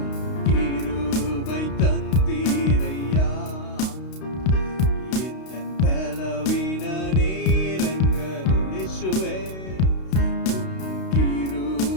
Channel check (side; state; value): right; late; 32 ms